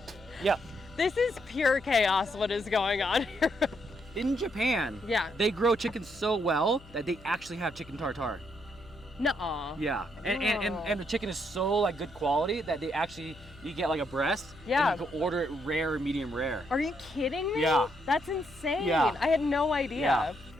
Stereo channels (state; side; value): noise; left; hum, 22 dB below the sound